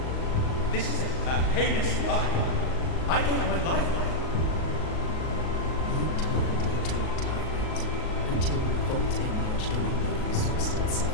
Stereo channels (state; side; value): late; right; 38 ms